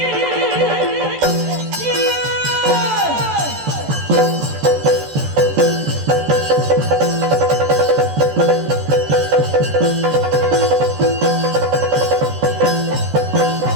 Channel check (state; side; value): late; left; 14 ms